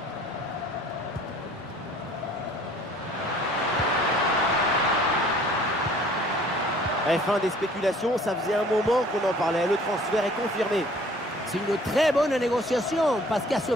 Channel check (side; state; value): both; normal; correlation 0.53